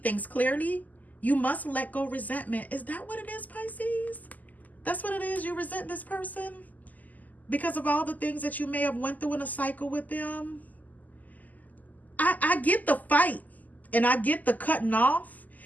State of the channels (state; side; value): late; right; 0.080 ms